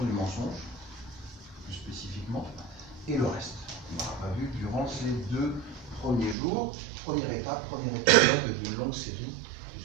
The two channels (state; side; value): drops out; left; at 6.4 s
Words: du mensonge, plus spécifiquement, et le reste. On n'aura pas vu durant ces 2 premiers jours. Première étape, premier épisode d'une longue série,